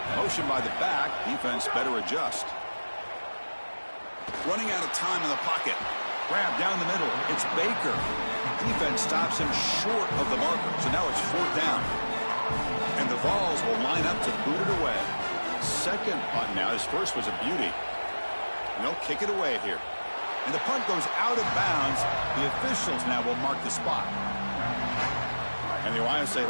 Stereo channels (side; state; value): both; inverted; correlation -1.00